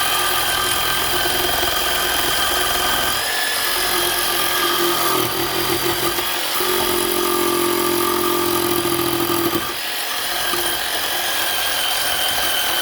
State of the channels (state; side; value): identical; both; correlation 1.00